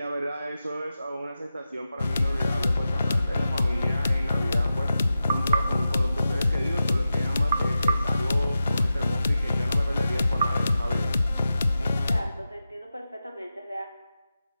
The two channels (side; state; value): both; inverted; correlation -0.91